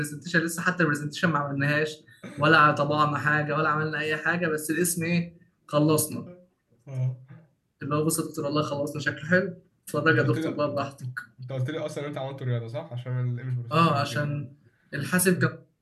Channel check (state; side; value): identical; both; correlation 1.00